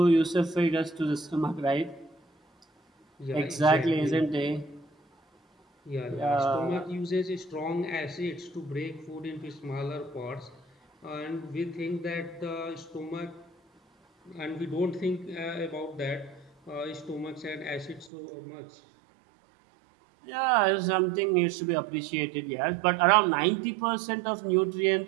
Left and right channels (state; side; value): drops out; left; at 18.1 s